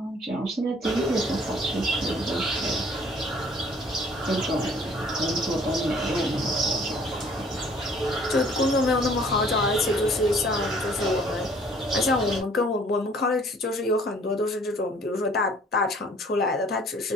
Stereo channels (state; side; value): normal; both; correlation 0.56